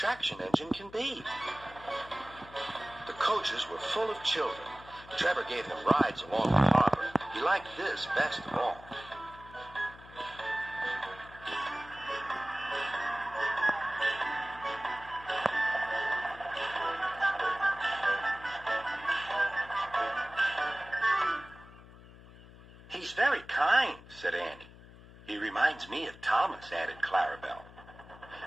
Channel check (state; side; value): noise; left; hum, 19 dB below the sound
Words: engine can be. The coaches were full of children. Trevor gave them rides along the harbor. He liked this best of all. He's very kind, said Annie. He reminds me of Thomas, added Clarabelle.